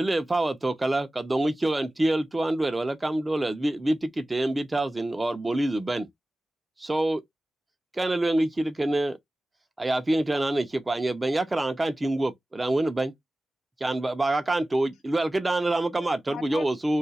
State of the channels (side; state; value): both; normal; correlation 0.97